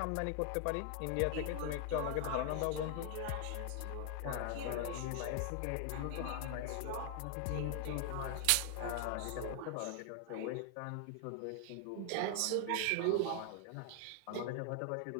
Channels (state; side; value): different; both; correlation 0.00